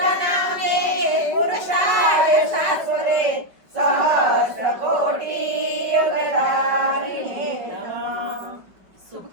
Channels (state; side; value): late; left; 5.3 ms